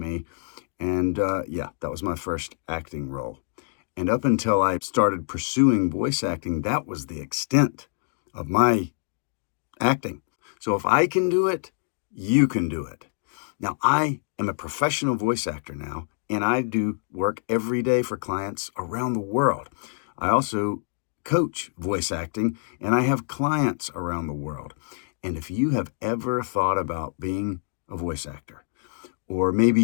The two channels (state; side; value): silent; right; digital silence